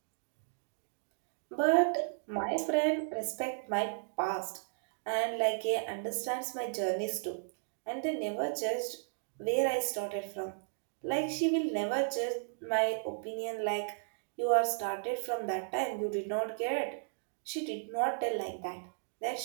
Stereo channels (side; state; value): left; silent; digital silence